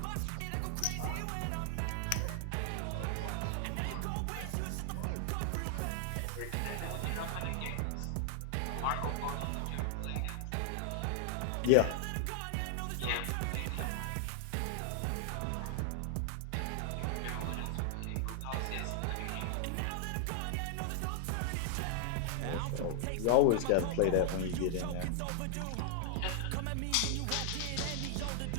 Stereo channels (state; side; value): different; both; correlation 0.00